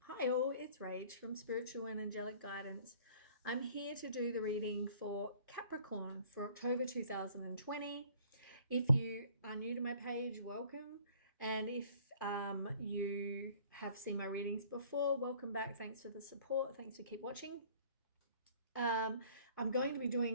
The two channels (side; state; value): both; inverted; correlation -0.54